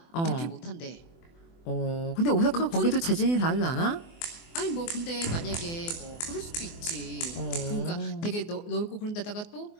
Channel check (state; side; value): late; right; 24 ms